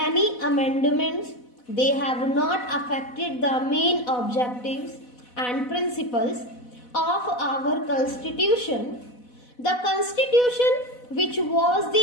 amendments, they have not affected the main objectives and principles of our Constitution. The Constitution, which was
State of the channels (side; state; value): right; late; 4.1 ms